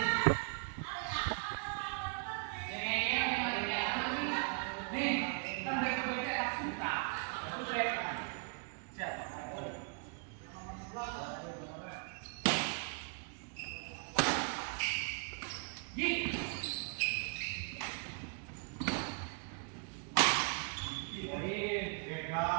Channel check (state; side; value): quieter; left; 38.9 dB